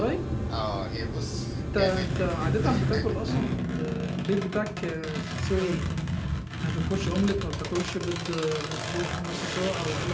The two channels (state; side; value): identical; both; correlation 1.00